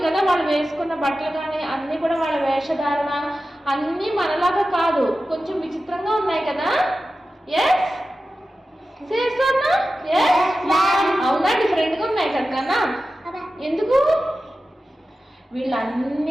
కదా వాళ్ళు వేసుకున్న బట్టలు కానీ అన్నీ కూడా, వాళ్ళ వేషధారణ అన్నీ మనలాగా కాదు, కొంచెం విచిత్రంగా ఉన్నాయి కదా. ఎస్ చేస్తానా? అవునా? డిఫరెంట్గా ఉన్నాయి కదా. ఎందుకు?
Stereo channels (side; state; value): both; normal; correlation 0.94